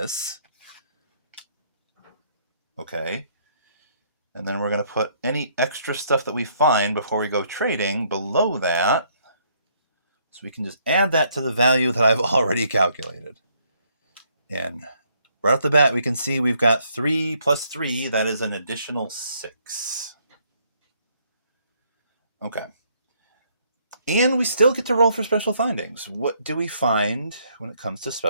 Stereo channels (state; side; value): inverted; both; correlation -0.68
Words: Okay. And then we're going to put any extra stuff that we find before we go trading below that. So we can just add that to the value that I've already calculated. And right off the bat, we can see we've got 3 plus 3. That is an additional 6. Okay. And we still get to roll for special findings. What do we find when it comes to